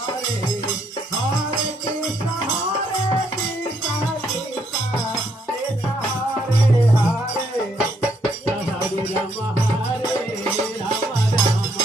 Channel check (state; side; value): normal; both; correlation 0.72